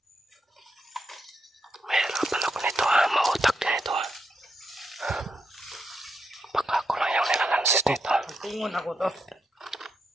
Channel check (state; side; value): normal; both; correlation 0.82